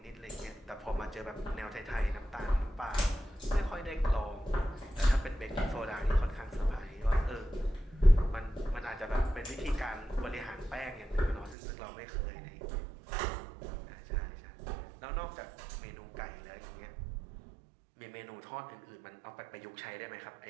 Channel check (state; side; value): drops out; left; at 11.6 s